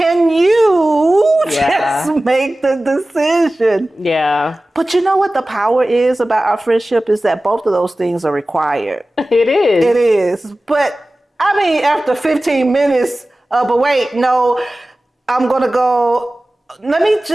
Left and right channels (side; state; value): both; normal; correlation 0.97